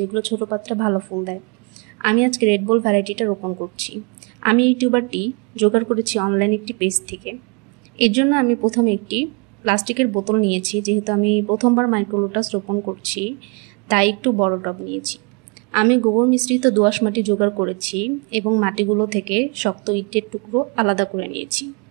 ছোট পাত্রে ভালো ফুল দেয়। আমি আজকে রেড বল ভ্যারাইটিটা রোপণ করছি। আমি এই টিউবারটি জোগাড় করেছি অনলাইন একটি পেজ থেকে। এর জন্য আমি প্রথমে একটি প্লাস্টিকের বোতল নিয়েছি, যেহেতু আমি প্রথমবার মাইক্রো লোটাস রোপণ করছি তাই একটু বড় টব নিয়েছি। আমি গোবর মিশ্রিত দোআঁশ মাটি জোগাড় করেছি এবং মাটিগুলো থেকে শক্ত ইটের টুকরো আলাদা করে নিয়েছি।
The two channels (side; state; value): left; quieter; 33.0 dB